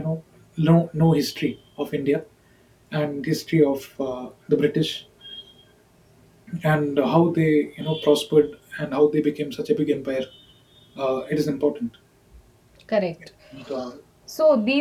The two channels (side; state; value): both; identical; correlation 1.00